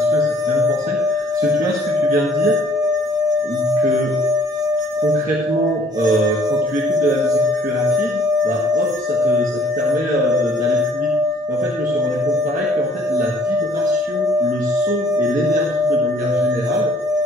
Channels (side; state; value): both; normal; correlation 0.59